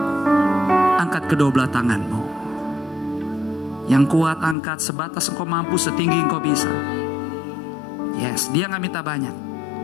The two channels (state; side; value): drops out; right; at 4.5 s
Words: angkat kedua belah tanganmu. Yang kuat angkat sebatas engkau mampu, setinggi engkau bisa. Yes, dia gak minta banyak.